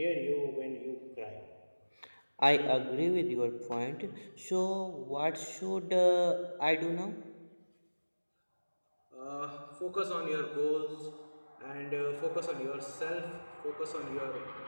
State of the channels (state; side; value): inverted; both; correlation -1.00